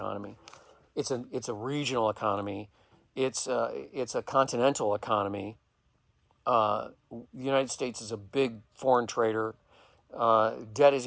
It's a regional economy. It's a continental economy. The United States is a big foreign trader. Debt is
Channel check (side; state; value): both; identical; correlation 1.00